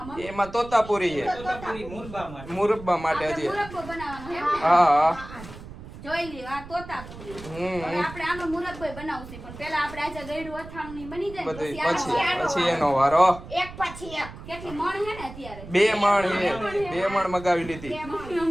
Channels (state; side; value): noise; right; rumble, 14 dB below the sound